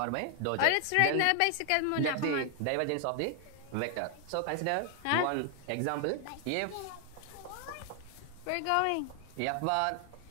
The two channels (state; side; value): different; both; correlation 0.00